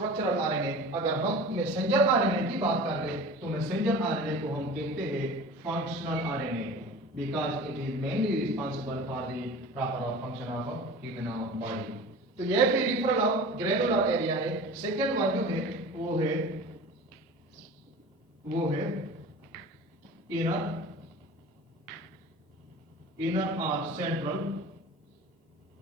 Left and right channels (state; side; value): normal; both; correlation 0.38